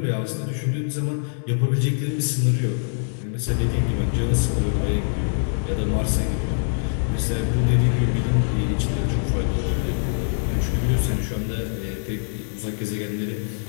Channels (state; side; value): silent; right; digital silence